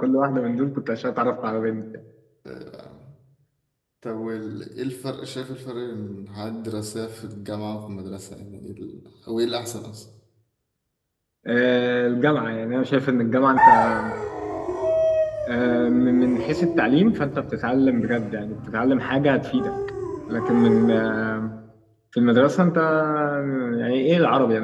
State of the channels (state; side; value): identical; both; correlation 1.00